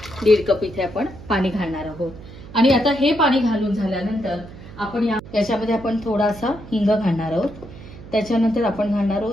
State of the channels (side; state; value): right; noise; hum, 16 dB below the sound